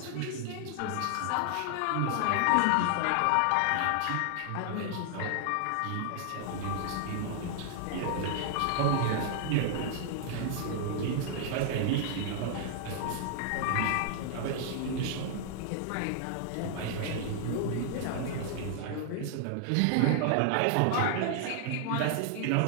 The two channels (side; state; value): both; different; correlation 0.00